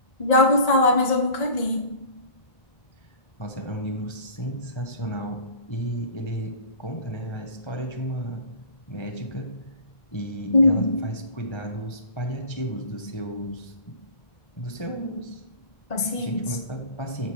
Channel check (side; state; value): right; late; 1.8 ms